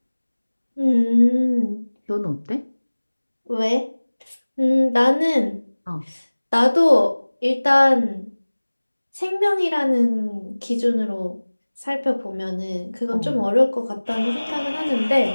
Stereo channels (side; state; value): both; inverted; correlation -1.00